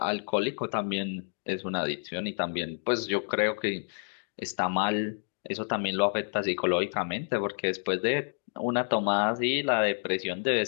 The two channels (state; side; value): silent; right; digital silence